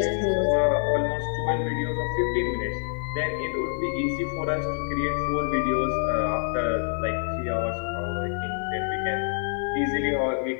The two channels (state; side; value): silent; right; 58 dB below the other